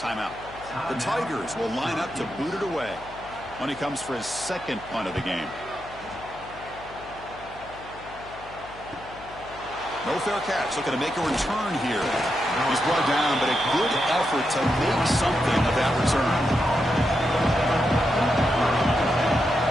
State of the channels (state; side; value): noise; left; hum, 19 dB below the sound